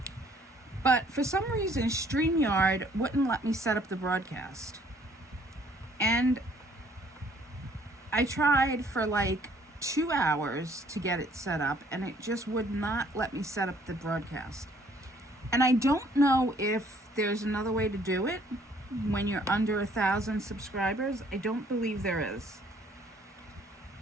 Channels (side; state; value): both; normal; correlation 0.61